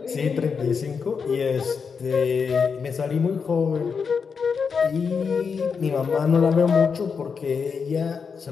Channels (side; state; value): right; quieter; 5.8 dB